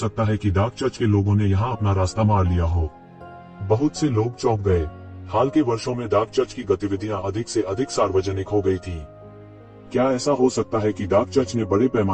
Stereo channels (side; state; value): both; identical; correlation 1.00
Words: है कि डार्क चर्च के लोगों ने यहाँ अपना रास्ता मार लिया हो? बहुत से लोग चौंक गए। हाल के वर्षों में डार्क चर्च की गतिविधियां अधिक से अधिक सार्वजनिक हो गई थीं। क्या ऐसा हो सकता है कि डार्क चर्च ने बड़े